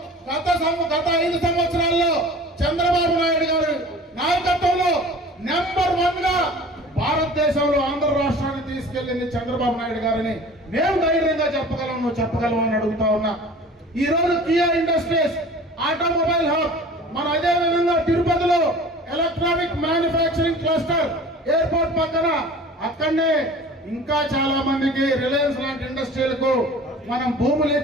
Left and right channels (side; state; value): both; normal; correlation 0.42